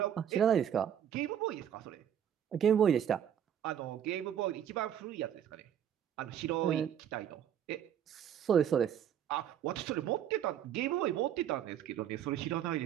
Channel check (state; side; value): quieter; left; 9.5 dB